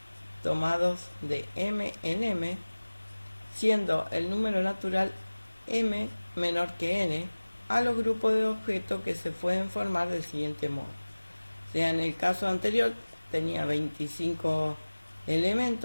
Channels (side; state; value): both; inverted; correlation -1.00